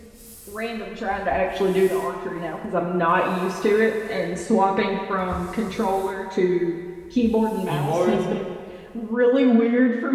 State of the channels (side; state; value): both; identical; correlation 1.00